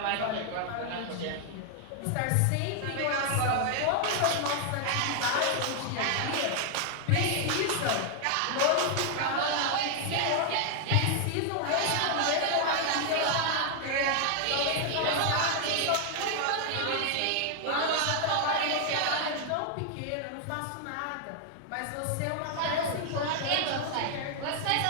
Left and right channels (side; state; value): both; different; correlation 0.00